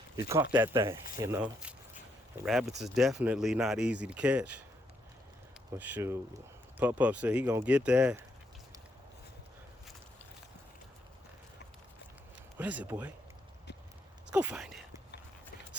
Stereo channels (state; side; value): normal; both; correlation 0.76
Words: He caught that thing, you know. And rabbits is definitely not easy to catch. But shoot, Pup said he gonna get that. What is it, boy? Let's go find it. Let's